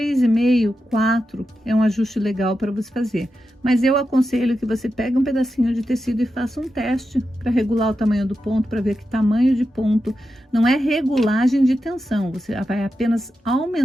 4 é um ajuste legal para você fazer. Mas eu aconselho que você pegue um pedacinho de tecido e faça um teste para regular o tamanho do ponto, para ver que tamanho de ponto. Não é regulagem de tensão, você vai apenas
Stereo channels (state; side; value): normal; both; correlation 0.89